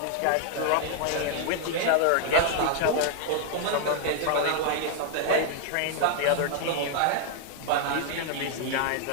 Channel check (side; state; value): both; different; correlation 0.00